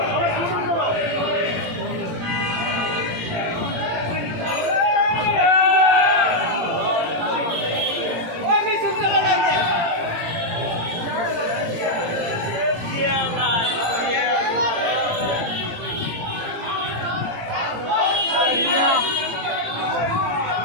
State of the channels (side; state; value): left; late; 17 ms